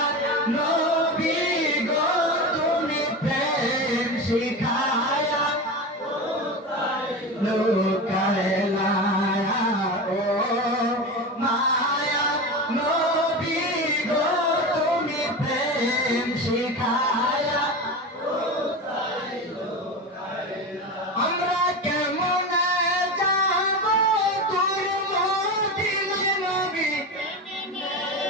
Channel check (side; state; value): both; normal; correlation 0.24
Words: নবী গো তুমি প্রেম শিখায়া লুকাইলা ও মায়া নবী গো তুমি প্রেম শিখায়া আমরা কেমনে যাব তোর মদিনায় নবী